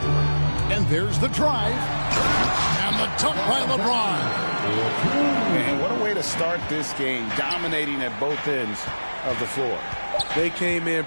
And there's the drive. And the dunk by LeBron. And what a way to start this game, dominating at both ends of the floor. They came in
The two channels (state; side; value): inverted; both; correlation -1.00